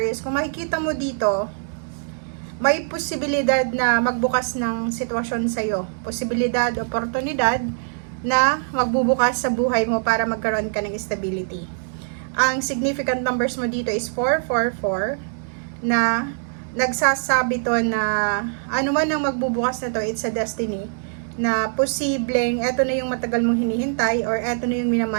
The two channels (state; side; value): silent; left; digital silence